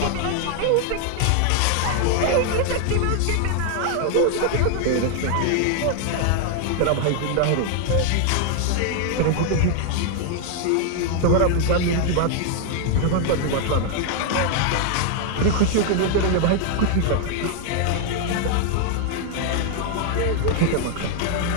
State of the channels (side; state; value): both; different; correlation 0.00